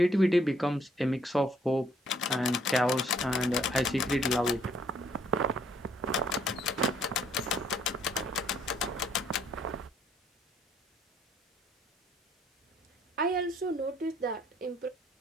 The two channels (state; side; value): normal; both; correlation 0.65